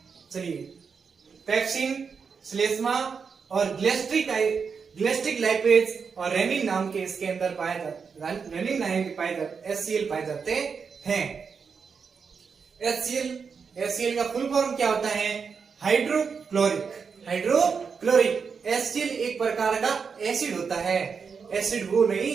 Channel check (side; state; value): left; quieter; 5.8 dB